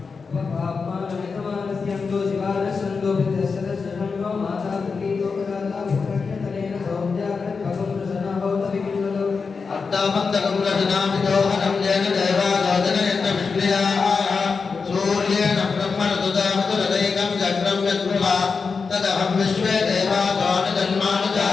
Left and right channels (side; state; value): right; quieter; 5.0 dB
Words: अट्टामन्तकं रचनामिदोहनं येन देवादोदनयन्त विष्णुयाः सूर्येण ब्रह्मणदुदामतुरदैकं चक्रं यत्पुरा तदहं विश्वे